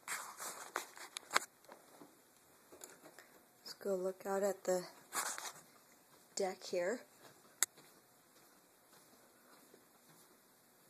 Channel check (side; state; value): both; identical; correlation 1.00